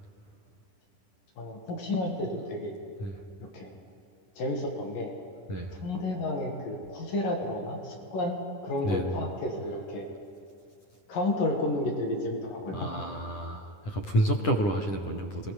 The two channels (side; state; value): right; late; 9.9 ms